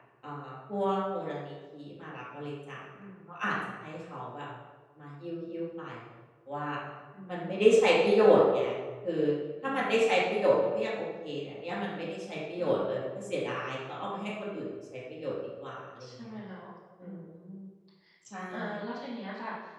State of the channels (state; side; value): identical; both; correlation 1.00